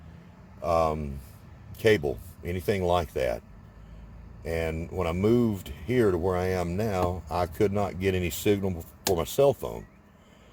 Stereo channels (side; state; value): both; identical; correlation 1.00